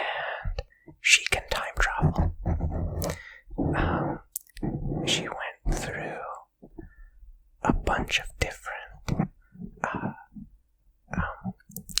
she can time travel. She went through a bunch of different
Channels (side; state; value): both; identical; correlation 1.00